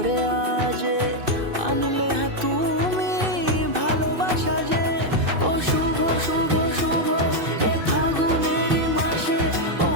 আজে, আনলে তুমি ভালোবাসা যে। ও শুভ শুভ শুভ এ ফাগুনেরই মাসে, ও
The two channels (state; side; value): late; left; 2.6 ms